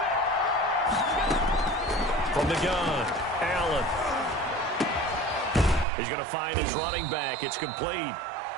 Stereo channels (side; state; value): left; drops out; at 5.9 s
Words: From the gun, Allen. He's going to find his running back. It's complete.